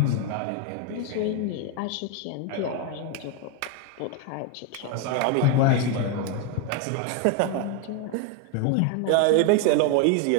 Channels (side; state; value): both; different; correlation 0.01